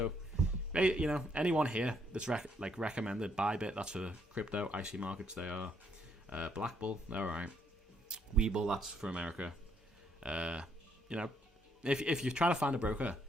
Anyone here that's recommended. Bybit, that's for crypto. IC Markets, they are. Black Bull, they're alright. Webull, that's for America. If you're trying to find a broker,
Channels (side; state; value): both; normal; correlation 0.71